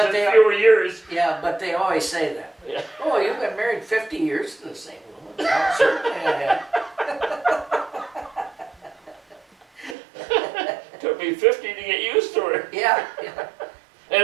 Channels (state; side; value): drops out; left; at 10.0 s